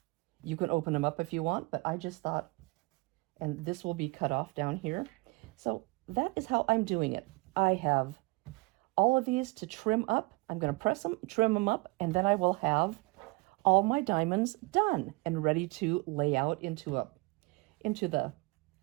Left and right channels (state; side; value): quieter; left; 26.6 dB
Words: you can open them up if you want, but I just thought, and this will be cut off down here. So that is how I'm doing it. I have all of these to trim up. I'm going to press them, trim them up, and then I will have all my diamonds done and ready to lay out into the